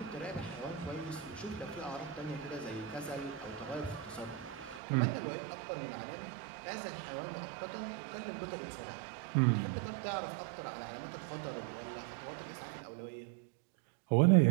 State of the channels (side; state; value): left; drops out; at 4.8 s